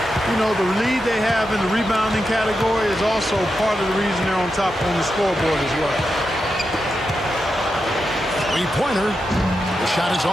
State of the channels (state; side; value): normal; both; correlation 0.87